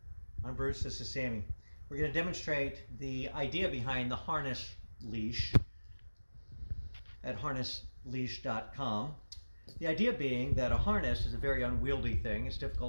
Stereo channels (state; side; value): inverted; both; correlation -1.00